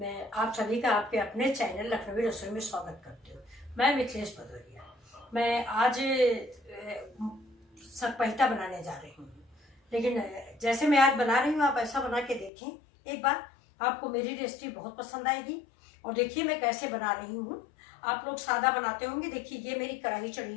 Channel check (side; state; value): right; drops out; at 12.5 s